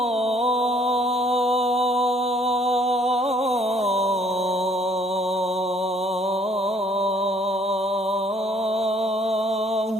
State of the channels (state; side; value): normal; both; correlation 0.62